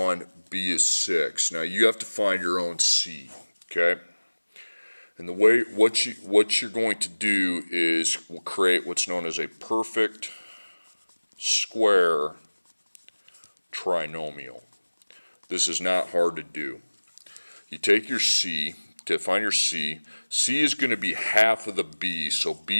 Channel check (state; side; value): inverted; both; correlation -1.00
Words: B is 6. Now you have to find your own C, okay? And the way, what you're going to do is we'll create what's known as a perfect square trinomial. This is not hard to do. You take your C, to find your C, C is going to be half of the B, so